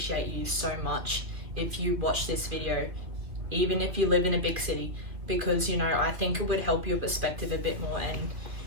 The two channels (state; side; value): late; left; 2.6 ms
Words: you so much if you watch this video, even if you live in a big city, because, you know, I think it would help your perspective a bit more and,